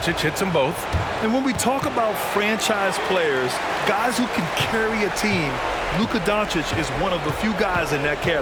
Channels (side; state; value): both; identical; correlation 1.00